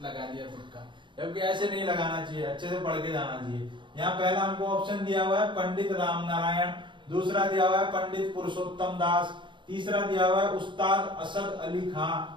लगा दिया तुक्का। जबकि ऐसे नहीं लगाना चाहिए, अच्छे से पढ़ के जाना चाहिए। यहाँ पहला हमको ऑप्शन दिया हुआ है पंडित राम नारायण, दूसरा दिया हुआ है पंडित पुरुषोत्तम दास, तीसरा दिया हुआ है उस्ताद असद अली खां,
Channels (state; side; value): late; left; 0.23 ms